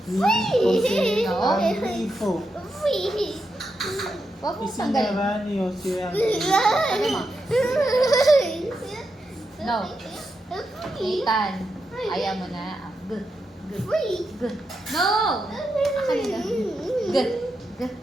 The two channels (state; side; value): normal; both; correlation 0.85